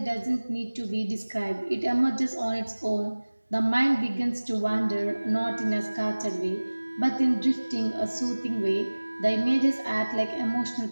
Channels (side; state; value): both; inverted; correlation -1.00